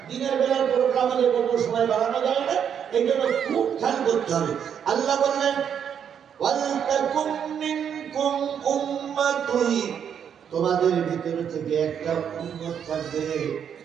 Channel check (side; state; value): left; quieter; 8.2 dB